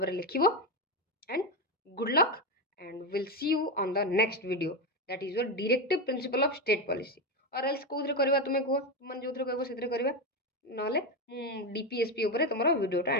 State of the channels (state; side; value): normal; both; correlation 0.11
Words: लिख and good luck and will see you on the next video that is your directive principle of state policy और एल्स कौन करवा तुम्हें कह तुम जो कह से करवा ना डीपीएसपी उपर तुम वीडियोटा